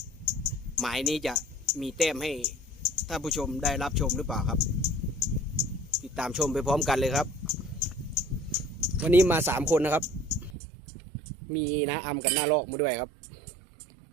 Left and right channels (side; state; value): left; drops out; at 10.6 s